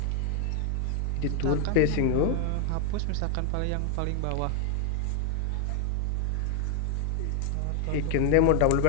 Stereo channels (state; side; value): different; both; correlation 0.00